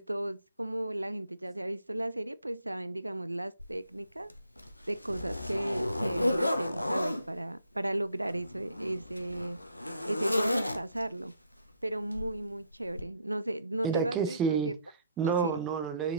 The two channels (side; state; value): both; inverted; correlation -0.66